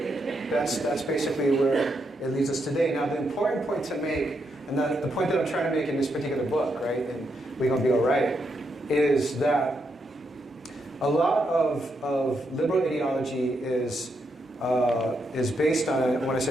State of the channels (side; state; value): both; normal; correlation 0.81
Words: That's basically where it leads us today. Now, the important point to make, and the point that I'm trying to make in this particular book, right, and we're going to be all right, is that a lot of liberal ideology is based on, when I